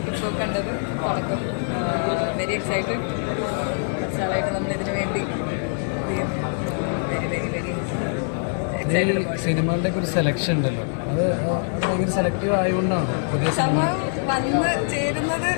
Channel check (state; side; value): silent; right; 63 dB below the other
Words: ഇപ്പോൾ കണ്ടത്. തുടക്കം വെരി എക്സൈറ്റഡ്. കുറച്ചാളായിട്ട് നമ്മളിതിനു വേണ്ടി വെരി വെരി വെരി എക്സൈറ്റഡ്. സിനിമകളുടെ ഒരു സെലക്ഷൻ ഉണ്ടല്ലോ, അത് ഭയങ്കര സെലക്റ്റീവ് ആയതുകൊണ്ടാണ് പുതിയ സമയം വന്ന് ചേരുന്നത്.